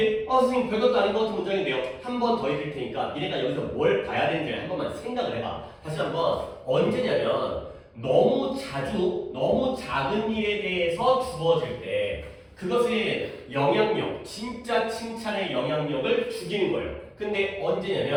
선생님 별것도 아닌 것 같은 문장인데요. 한 번 더 읽을 테니까 니네가 여기서 뭘 봐야 되는지 한 번만 생각을 해봐. 다시 한번 언제냐면 너무 자주 너무 작은 일에 대해서 주어질 때 그것의 영향력, 진짜 칭찬의 영향력을 죽이는 거예요. 근데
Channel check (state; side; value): identical; both; correlation 1.00